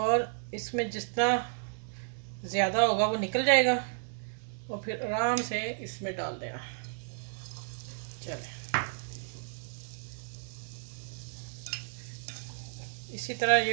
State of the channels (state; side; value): silent; left; 56 dB below the other